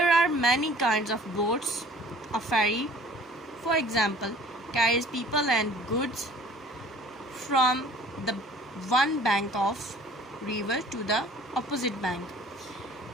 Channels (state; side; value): normal; both; correlation 0.50